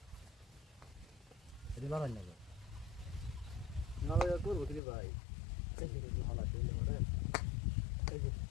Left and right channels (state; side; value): drops out; right; at 4.8 s